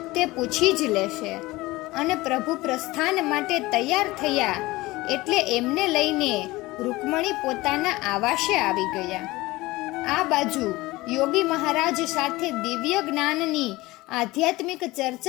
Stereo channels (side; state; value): right; quieter; 20.1 dB